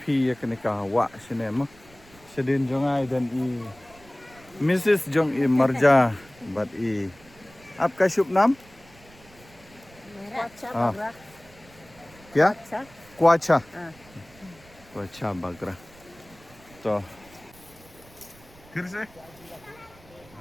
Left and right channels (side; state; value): right; noise; rumble, 25 dB below the sound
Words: ya kena kawa sini mah. Sedin jongai dan i Mrs. Jong i Marja bat i. Apka शुभ नाम? हाँ. क्या? Kuacha. Kuacha Bagra. तो फिर से